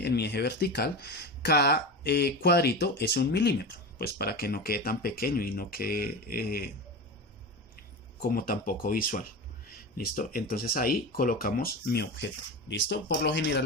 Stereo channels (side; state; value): both; normal; correlation 0.24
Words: mi eje vertical, cada cuadrito es 1 milímetro, pues para que no quede tan pequeño y no quede como tan poco visual. ¿Listo? Entonces ahí colocamos mi objeto. ¿Listo? Por lo general